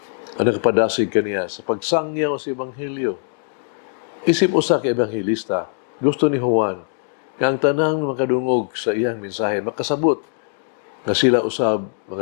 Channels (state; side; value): silent; right; digital silence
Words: ang nakapadasig kaniya sa pagsangyaw sa Ebanghelyo. Isip usa ka ebanghelista, gusto ni Juan nga ang tanang makadungog sa iyang mensahe makasabot nga sila usab